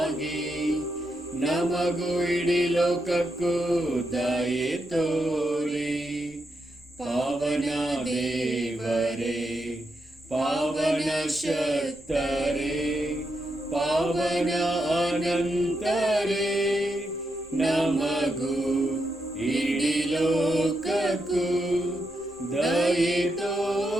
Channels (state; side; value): normal; both; correlation 0.84